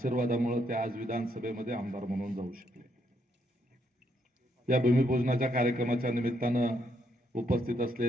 ते आज विधानसभेमध्ये आमदार म्हणून जाऊ शकले. या भूमिपूजनाच्या कार्यक्रमाच्या निमित्तानं उपस्थित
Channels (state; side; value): normal; both; correlation 0.75